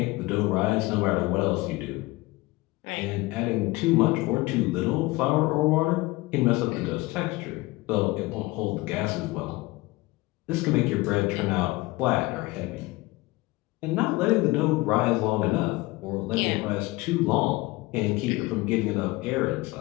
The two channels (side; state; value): right; quieter; 21.0 dB